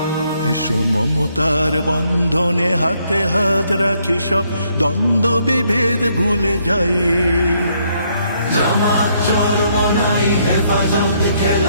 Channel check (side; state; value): both; inverted; correlation -0.71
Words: মমতার বন্ধনে হাতে হাত রাখি, সব দ্বন্দ্ব বিভেদ ভুলে যাই। জামাত চরমনাই হেফাজত